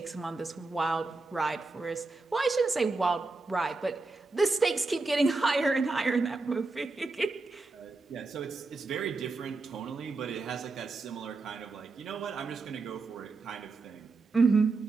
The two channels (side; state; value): left; quieter; 3.7 dB